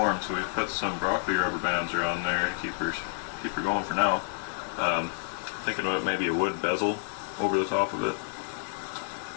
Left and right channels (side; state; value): right; silent; digital silence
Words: so we've put some broccoli rubber bands around there to keep her going for now. Thinking about maybe a wood bezel over the top of it.